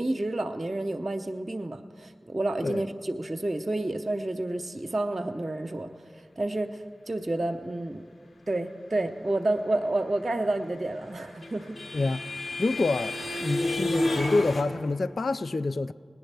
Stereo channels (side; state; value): both; normal; correlation 0.95